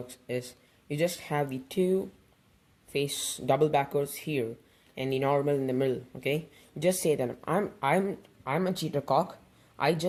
is you just have the 2 face double backers here and the normal in the middle, okay? Just say that I'm a cheater cock. I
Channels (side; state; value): both; identical; correlation 1.00